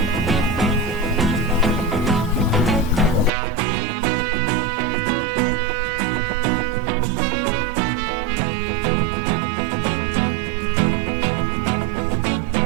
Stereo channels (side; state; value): left; drops out; at 3.3 s